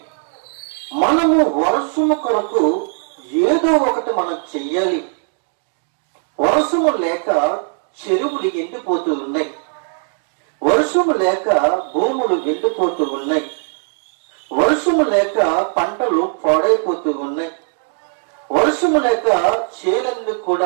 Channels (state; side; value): silent; left; 60 dB below the other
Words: మనము వర్షము కొరకు ఏదో ఒకటి మనం చెయ్యాలి. వర్షము లేక చెరువులు ఎండిపోతూ ఉన్నాయి, వర్షము లేక భూములు ఎండిపోతూ ఉన్నాయి, వర్షము లేక పంటలు పాడైపోతూ ఉన్నాయి, వర్షము లేక చేలన్నీ